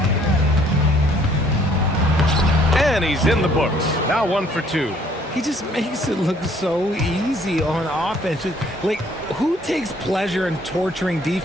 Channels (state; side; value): normal; both; correlation 0.62